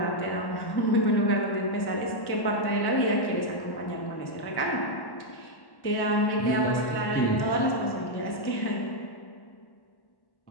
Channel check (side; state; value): right; late; 1.1 ms